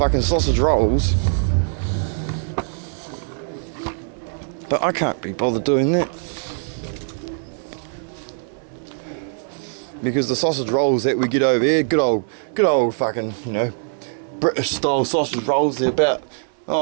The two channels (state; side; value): silent; left; digital silence